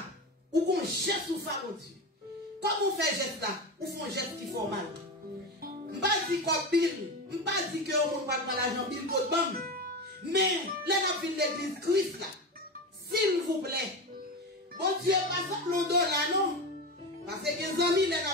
ou qu'on geste ou favori. Comme on fait geste là, ou font geste qui fait mal. Je ne pas dire comme Bill, je ne pas dire que on ne parle pas l'argent Bill code bam. Mais, là, on a l'église Christ là. S'il vous plaît. Bon Dieu, pas ça $, non? Parce que les amis, les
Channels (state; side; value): normal; both; correlation 0.22